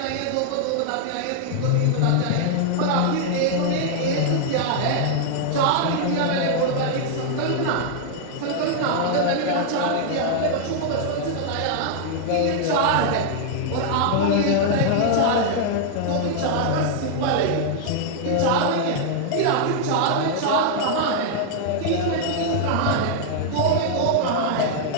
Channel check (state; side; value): different; both; correlation -0.01